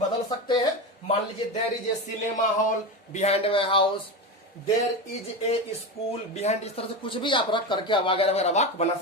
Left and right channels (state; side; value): normal; both; correlation 0.20